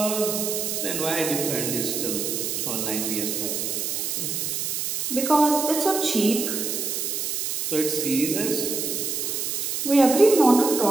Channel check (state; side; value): noise; right; hiss, 2 dB below the sound